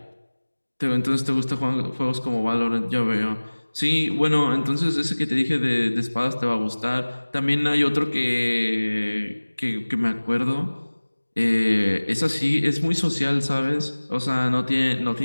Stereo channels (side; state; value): both; inverted; correlation -1.00